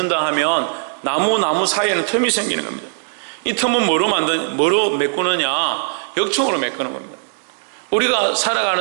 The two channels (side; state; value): left; silent; 66 dB below the other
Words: 하면 나무 사이에는 틈이 생기는 겁니다. 이 틈은 뭐로 메꾸느냐? 역청으로 메꾸는 겁니다. 우리가